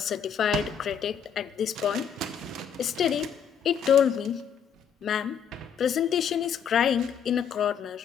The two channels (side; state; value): right; quieter; 7.6 dB